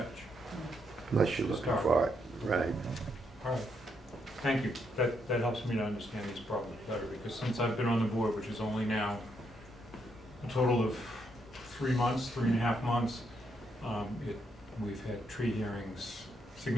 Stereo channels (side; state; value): both; normal; correlation 0.77